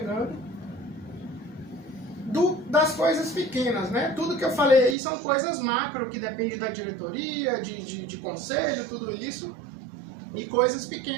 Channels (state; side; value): drops out; left; at 5.0 s